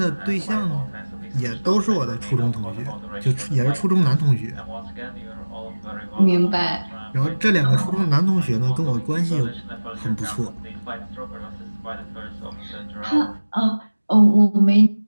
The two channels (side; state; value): both; inverted; correlation -1.00